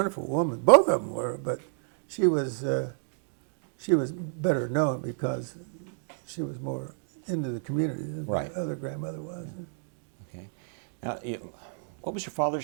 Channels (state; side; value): silent; left; digital silence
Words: woman. Both of them were, but she was better known because she was more into the community than my other grandmother was. Okay. Now, what was your